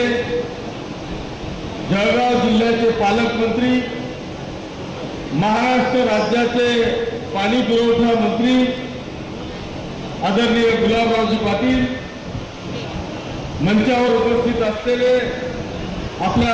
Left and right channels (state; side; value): identical; both; correlation 1.00